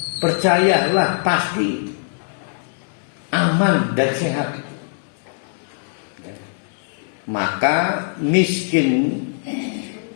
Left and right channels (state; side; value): silent; right; digital silence